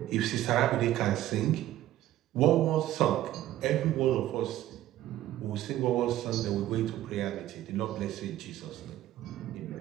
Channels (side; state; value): left; quieter; 13.8 dB